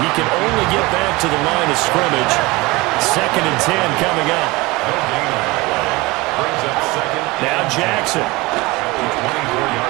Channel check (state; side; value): quieter; left; 22.5 dB